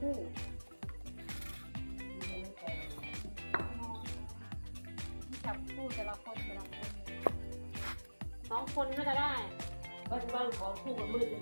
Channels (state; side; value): inverted; both; correlation -1.00